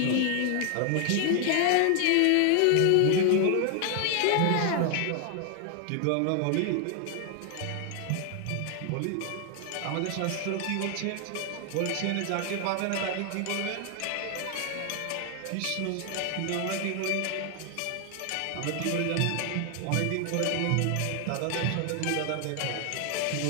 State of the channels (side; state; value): both; different; correlation 0.00